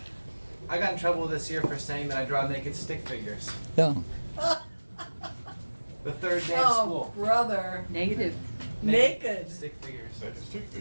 I got in trouble this year for saying that I draw naked stick figures. Yeah. The third day of Oh, school. brother. Negative. Naked. Stick figures. That's a stick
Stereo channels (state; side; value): inverted; both; correlation -1.00